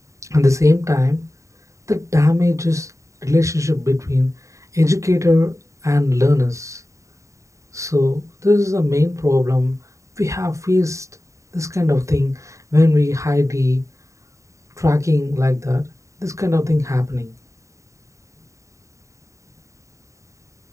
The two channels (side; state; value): left; late; 0.15 ms